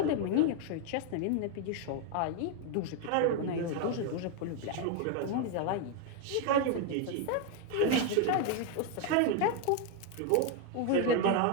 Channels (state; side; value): different; both; correlation 0.01